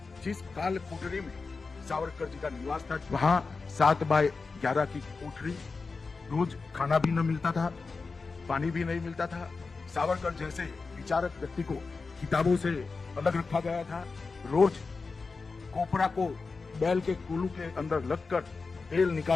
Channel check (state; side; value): quieter; right; 4.3 dB